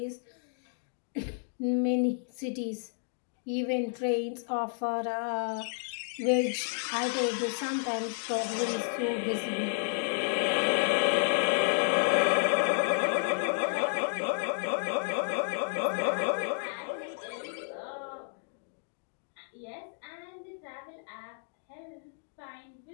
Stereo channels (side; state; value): right; silent; digital silence